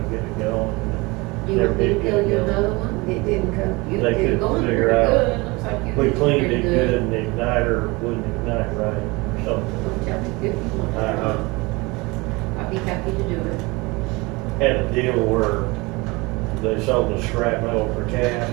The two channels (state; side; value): quieter; left; 24.6 dB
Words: to get it going. you Never want me to did get tell it you going. another one? It didn't come. You They did couldn't going figure pretty out. good. Looks like you We did cleaned pretty it good, and the igniter wouldn't ignite right, or something. Well, tell me if you want. I'd be happy to do it. Had a deal where they sold the scrap metal for cash,